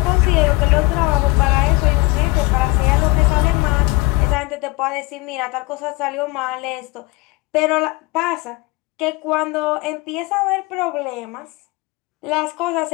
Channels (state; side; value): quieter; right; 21.9 dB